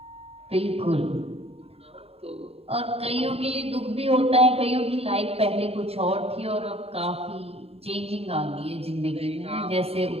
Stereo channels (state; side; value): late; left; 0.29 ms